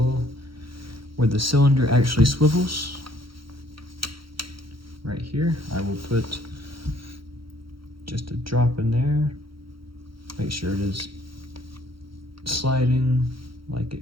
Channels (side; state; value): left; late; 0.74 ms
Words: where the cylinder actually swivels. Right here, I will put just a drop in there. Make sure it is sliding like